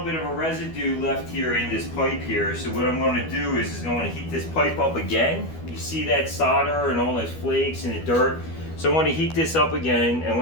bit of a residue left here in this pipe here. So what I'm going to do is I'm going to heat this pipe up again. You see that solder and all those flakes and the dirt. So I want to heat this up again, and I'm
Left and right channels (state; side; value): late; right; 12 ms